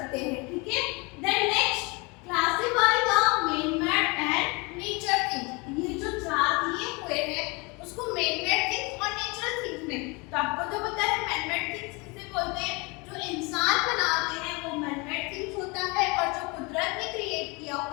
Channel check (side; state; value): right; quieter; 28.1 dB